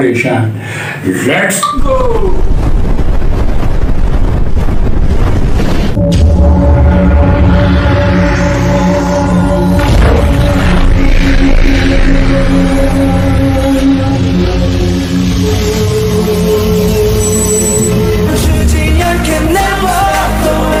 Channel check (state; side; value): identical; both; correlation 1.00